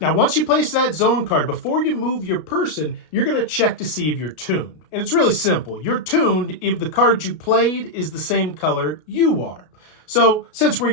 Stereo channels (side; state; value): right; late; 33 ms